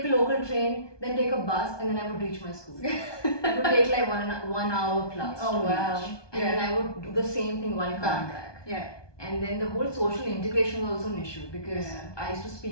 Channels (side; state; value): right; late; 1.2 ms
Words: a local train, then take a bus, and then I would reach my school. It would take like 1 hour plus to reach. And then I would do the same thing while coming back. And then the whole social integration was also an issue, because I used to